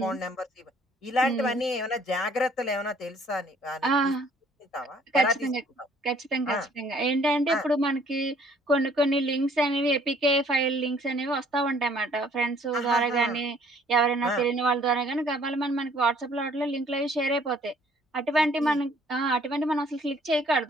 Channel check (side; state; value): both; normal; correlation 0.60